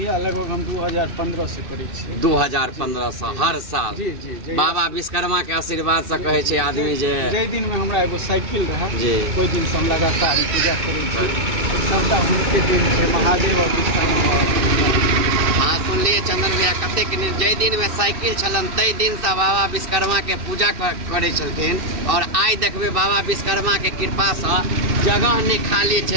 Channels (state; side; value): late; left; 2.6 ms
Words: लगभग हम 2015 से करे छियै। 2015 से हर साल? जी जी। बाबा विश्वकर्मा के आशीर्वाद से कहे छै आदमी जे जै दिन में हमरा एगो साइकिल रहे जी कोई दिन से हम लगातार पूजा करे छियै। सबटा हुनके दिन छै, महादेव और विश्वकर्मा। हाँ सुनलिए चंदन भैया कतेक जै दिन में साइकिल छलन तै दिन से बाबा विश्वकर्मा के पूजा करे छलखिन। और आइ देखबे बाबा विश्वकर्मा के कृपा से जगह नहीं खाली